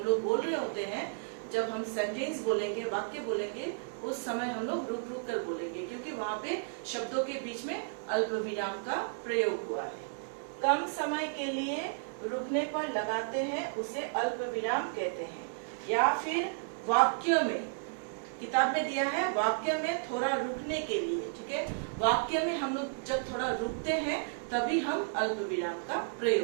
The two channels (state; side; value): silent; left; digital silence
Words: लोग बोल रहे होते हैं, जब हम सेंटेंस बोलेंगे, वाक्य बोलेंगे, उस समय हम लोग रुक रुक कर बोलेंगे, क्योंकि वहाँ पे शब्दों के बीच में अल्प विराम का प्रयोग हुआ है। कम समय के लिए रुकने पर लगाते हैं, उसे अल्प विराम कहते हैं। या फिर वाक्यों में, किताब में दिया है वाक्य में थोड़ा रुकने के लिए। ठीक है, वाक्य में हम लोग जब थोड़ा रुकते हैं तभी हम अल्प विराम का